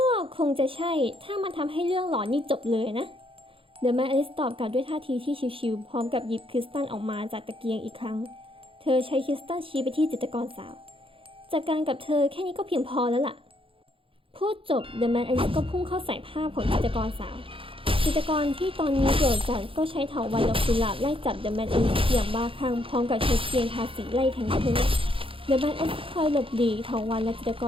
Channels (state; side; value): late; left; 0.26 ms